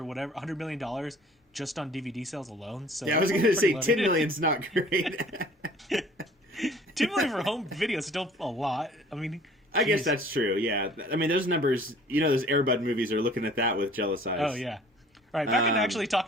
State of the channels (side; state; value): both; normal; correlation 0.51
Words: whatever, $100 million just on DVD sales alone. So yeah, I was going to say $10 million's not great. $2 million for home video is still a lot. I mean, I guess that's true. Yeah, I mean those numbers. You know, those Air Bud movies are looking at that with jealous eyes. Oh yeah. All right, back in actually